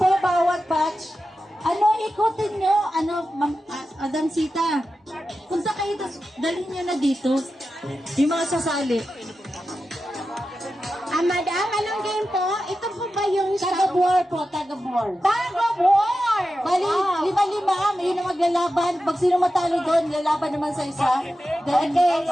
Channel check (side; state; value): both; normal; correlation 0.92